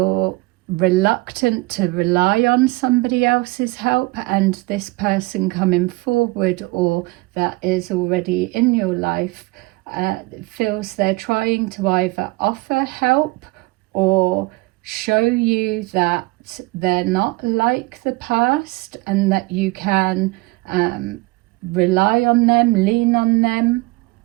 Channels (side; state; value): left; quieter; 22.7 dB